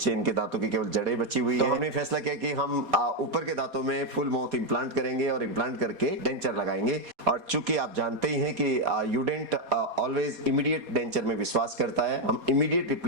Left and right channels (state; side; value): late; left; 4.2 ms